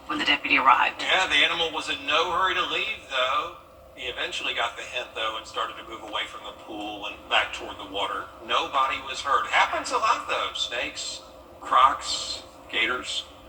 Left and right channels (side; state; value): both; identical; correlation 1.00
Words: when the deputy arrived. Yeah, the animal was in no hurry to leave, though. He eventually got the hint, though, and started to move away from the pool and back toward the water. Nobody was hurt. Happens a lot, though. Snakes, crocs, gators,